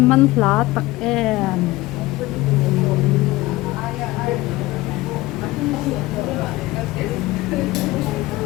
man hla tak em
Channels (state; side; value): quieter; right; 19.2 dB